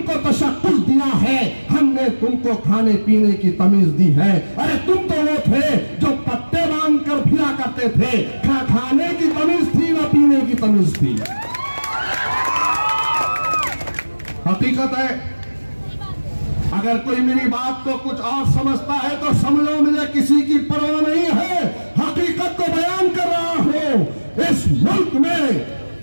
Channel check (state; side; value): inverted; both; correlation -1.00